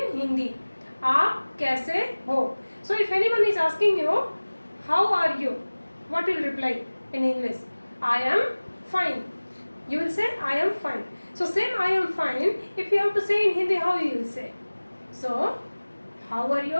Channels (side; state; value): both; inverted; correlation -1.00